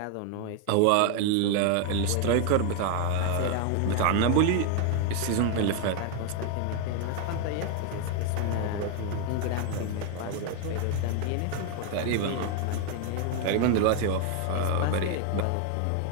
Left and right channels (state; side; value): different; both; correlation 0.00